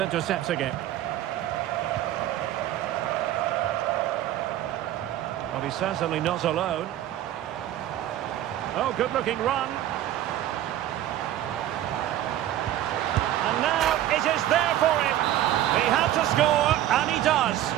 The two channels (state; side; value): quieter; left; 12.8 dB